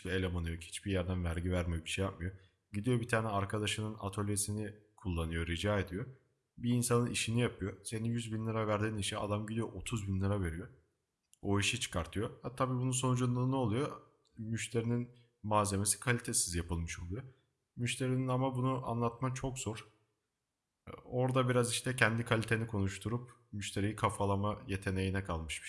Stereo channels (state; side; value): identical; both; correlation 1.00